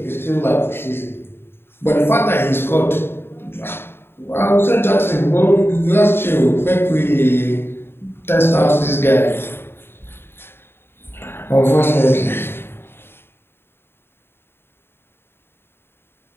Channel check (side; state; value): right; late; 0.11 ms